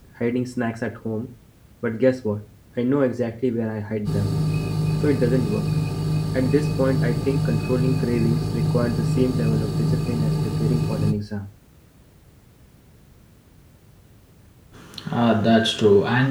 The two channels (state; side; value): identical; both; correlation 1.00